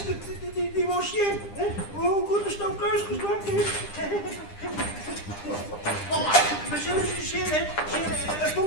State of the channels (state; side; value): late; right; 9.9 ms